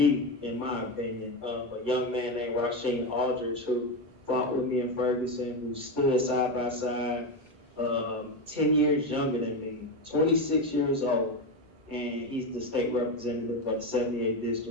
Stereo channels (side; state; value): both; normal; correlation 0.14